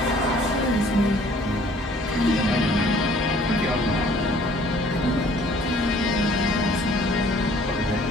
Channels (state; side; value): normal; both; correlation 0.56